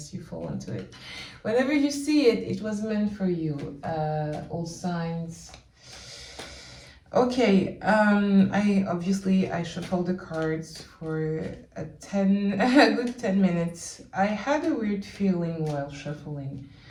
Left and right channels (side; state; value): both; identical; correlation 1.00